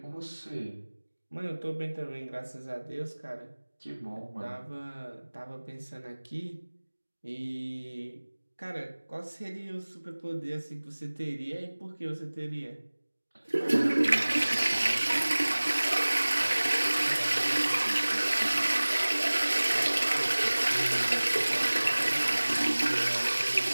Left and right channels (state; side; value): inverted; both; correlation -1.00